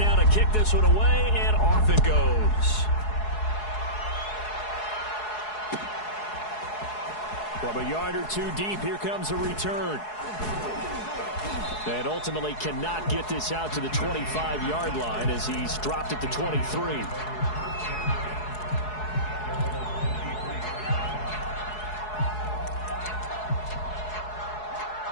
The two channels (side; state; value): right; late; 4.7 ms